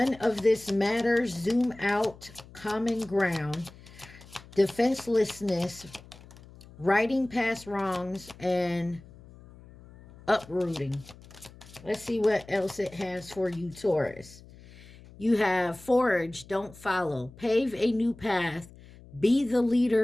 of this matters. Zoom out. Common ground. Defenselessness. Righting past wrongs and uprooting. Let's see what else it has for you, Taurus. You have forge, don't follow. Pave a new path. Be the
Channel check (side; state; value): left; noise; hum, 21 dB below the sound